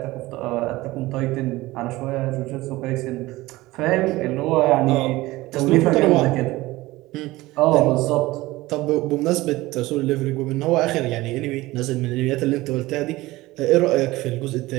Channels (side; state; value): left; quieter; 19.0 dB